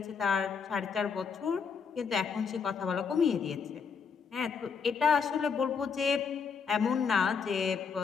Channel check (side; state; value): right; quieter; 5.9 dB